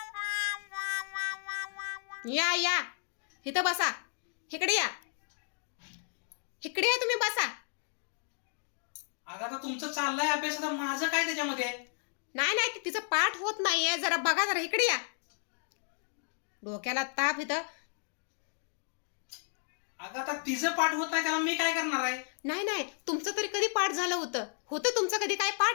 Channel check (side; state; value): right; silent; digital silence